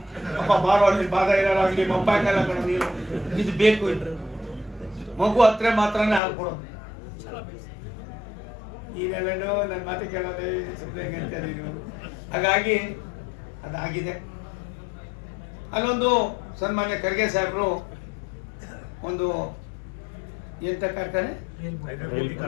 ಅಪ್ಪ ಬಾರೋ ಅಲ್ಲಿ ಬಾಧ ಇರೋರಾಗಲಿ ಮಪ್ಪಾಕಲ್ಲ ಕಣ, ನೀರು ಇದು ಬೇಕು, ಮಗು ಹತ್ರ ಮಾತ್ರನೇ ಹಾಕ್ಕೊಡೋದು. ಈಗೆಲ್ಲೋ ನನ್ನ ಮಾತು ಕೇಳೋದೇ ಸುಮ್ಮನೆ ಅಂತ ನೀವು. ಹಾಗಾಗಿ ಅದಾಗಿದೆ. ಅಲ್ಲೊಂದು ಸನ್ಮಾನ್ಯ ಖರ್ಗೆ ಸಾಹೇಬರು ಒಂದು ಎಂಥ ಕಾರ್ಖಾನೆ,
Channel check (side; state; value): right; drops out; at 6.2 s